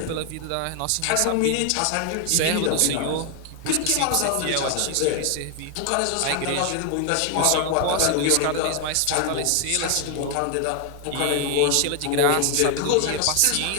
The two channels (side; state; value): both; different; correlation 0.00